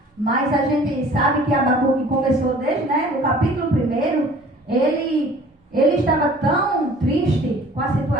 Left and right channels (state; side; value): normal; both; correlation 0.49